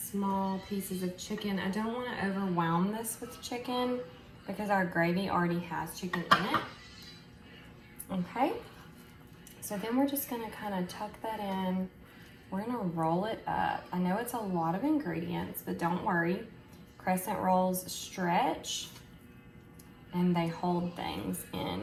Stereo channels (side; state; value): both; identical; correlation 1.00